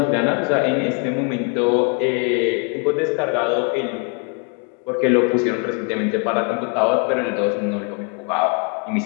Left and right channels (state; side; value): quieter; right; 36.7 dB